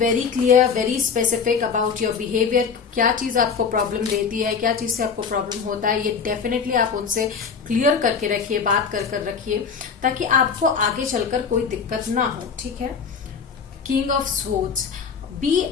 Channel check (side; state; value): right; quieter; 6.0 dB